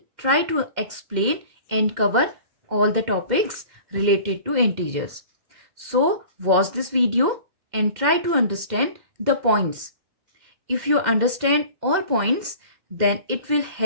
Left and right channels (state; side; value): late; left; 2.0 ms